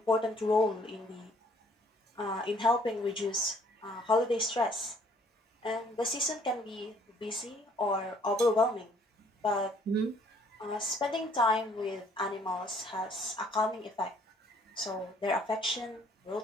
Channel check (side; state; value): both; normal; correlation 0.61